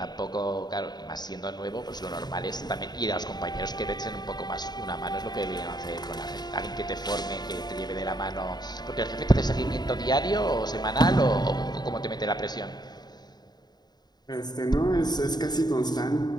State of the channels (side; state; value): right; late; 0.20 ms